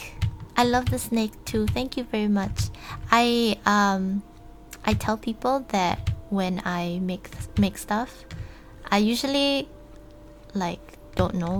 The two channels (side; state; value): both; identical; correlation 1.00